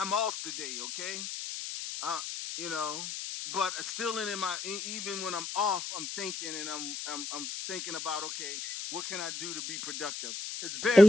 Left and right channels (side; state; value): left; noise; hiss, 6 dB below the sound